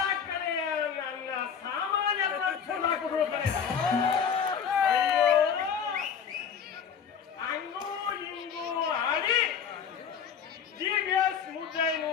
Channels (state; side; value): quieter; right; 7.3 dB